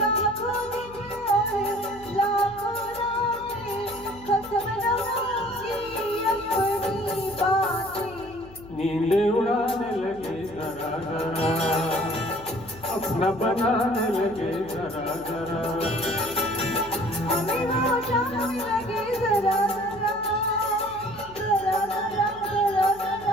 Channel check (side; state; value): left; noise; hum, 20 dB below the sound